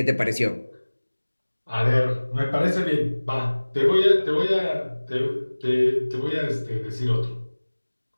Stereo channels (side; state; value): both; inverted; correlation -1.00